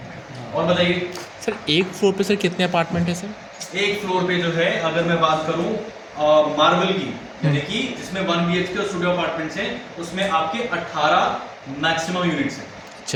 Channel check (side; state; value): both; identical; correlation 1.00